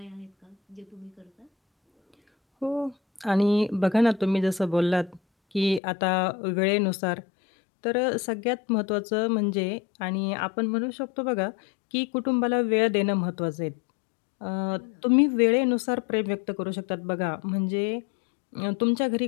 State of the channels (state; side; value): drops out; right; at 5.8 s